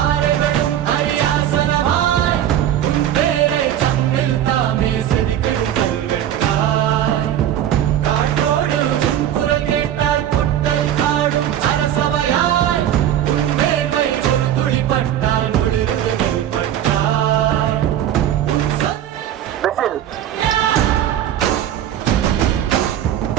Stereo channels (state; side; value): quieter; left; 11.1 dB